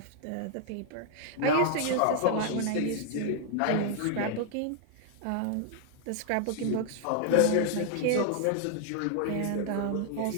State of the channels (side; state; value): both; different; correlation -0.01